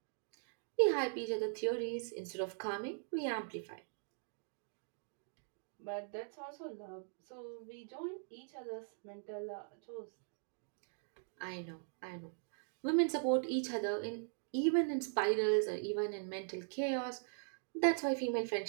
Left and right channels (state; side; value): silent; left; digital silence